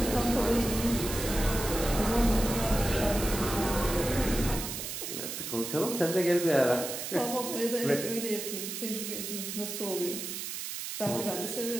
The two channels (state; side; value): noise; right; hiss, 6 dB below the sound